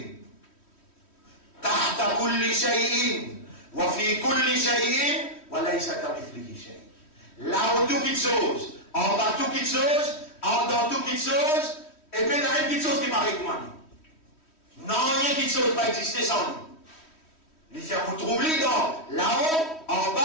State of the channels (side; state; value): right; late; 3.1 ms